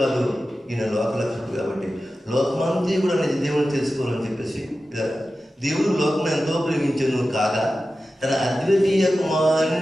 ఈయన లోకలక్షకుడు కాబట్టి లోకమంతా కూడా నిజ దేవుని తెలుసుకోవాలని చెప్పేసి దేవుడు లోకం ఎంతో ప్రేమించను కాగా తన అద్వితీయ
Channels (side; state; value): both; normal; correlation 0.94